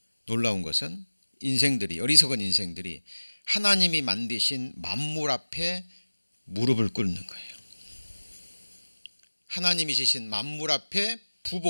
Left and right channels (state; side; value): inverted; both; correlation -1.00